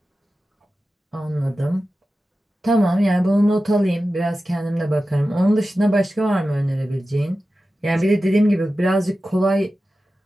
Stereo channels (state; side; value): normal; both; correlation 0.94